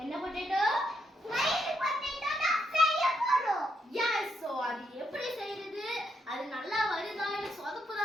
என்ன பொட்டேட்டோ? ஸ்மைலி பொட்டேட்டோ தான் செய்ய போறோம். எஸ். சோ அது எப்படி செய்யறது? அது நல்லா வருதா இல்ல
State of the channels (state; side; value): normal; both; correlation 0.78